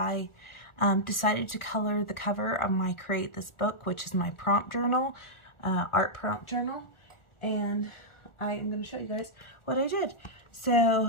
decided to color the cover of my Create This Book, which is my prompt journal, art prompt journal. And I am going to show you guys what I did.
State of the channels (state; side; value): late; right; 1.4 ms